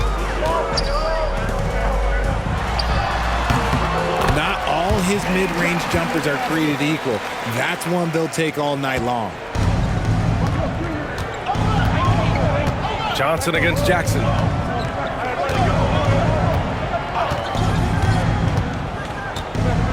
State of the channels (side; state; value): both; identical; correlation 1.00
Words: Not all his mid-range jumpers are created equal. That's one they'll take all night long. Johnson against Jackson.